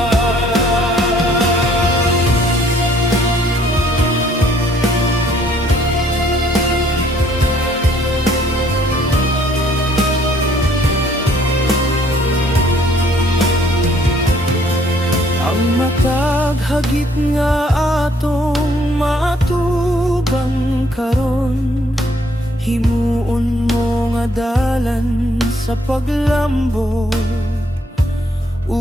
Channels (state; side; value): normal; both; correlation 0.63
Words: hagit nga atong matubang karon, himuon mo nga dalan sa paglambot